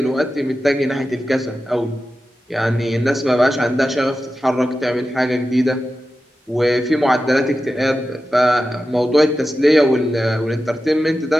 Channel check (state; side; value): normal; both; correlation 0.92